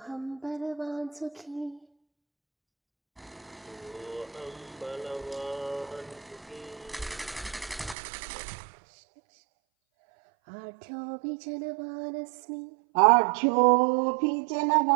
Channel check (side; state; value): left; drops out; at 8.0 s